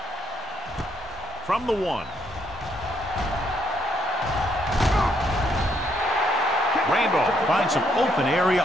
From the 1. Randolph finds some open area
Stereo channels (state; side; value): normal; both; correlation 0.73